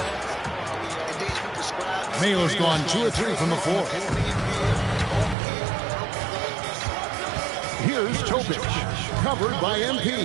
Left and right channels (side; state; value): left; drops out; at 5.4 s